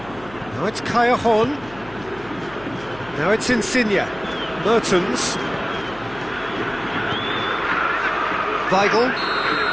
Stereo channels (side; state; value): left; noise; hum, 21 dB below the sound